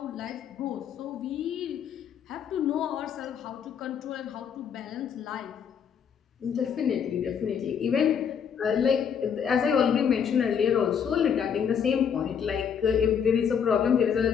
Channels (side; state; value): right; quieter; 7.5 dB